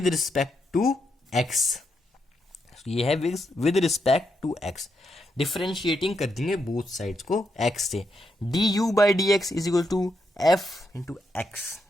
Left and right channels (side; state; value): both; normal; correlation 0.81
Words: respect to X, ये है with respect to X, differentiating कर देंगे बोथ साइड्स को एक्स से, D U by D X is equal to F into x,